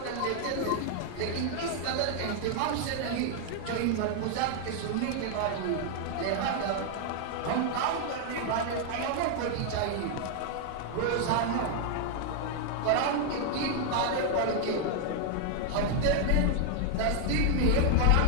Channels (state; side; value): different; both; correlation 0.00